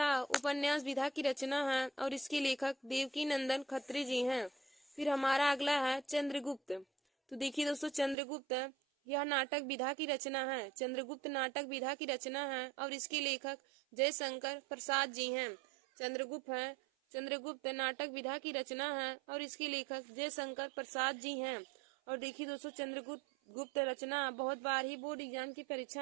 उपन्यास विधा की रचना है और इसके लेखक देवकी नंदन खत्री जी हैं। फिर हमारा अगला है चंद्रगुप्त। तो देखिए दोस्तों चंद्रगुप्त यह नाटक विधा की रचना है। चंद्रगुप्त नाटक विधा की रचना है और इसके लेखक जयशंकर प्रसाद जी हैं। चंद्रगुप्त नाटक विधा की रचना है और इसके लेखक जयशंकर प्रसाद जी हैं। और देखिए दोस्तों चंद्रगुप्त रचना बहुत बार ही बोर्ड एग्जाम की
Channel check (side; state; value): left; drops out; at 8.2 s